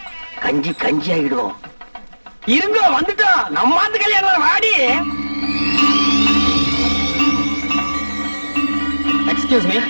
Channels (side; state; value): both; inverted; correlation -1.00